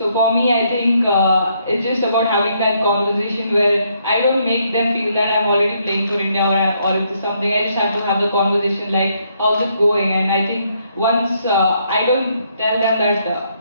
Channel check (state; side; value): inverted; both; correlation -0.73